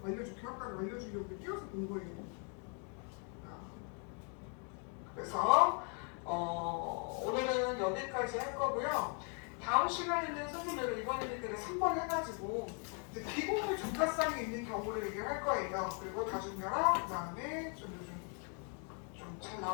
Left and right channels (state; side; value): quieter; right; 39.8 dB